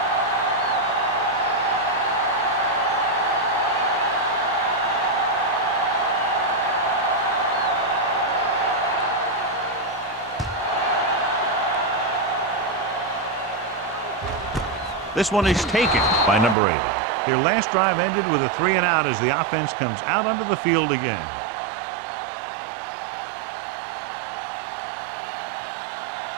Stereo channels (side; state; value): left; drops out; at 16.6 s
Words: This one is taken by number 80. Their last drive ended with a 3-and-out as the offense comes out onto the field again.